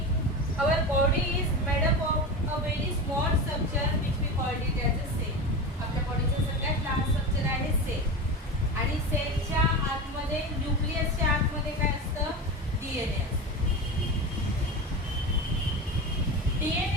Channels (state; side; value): normal; both; correlation 0.25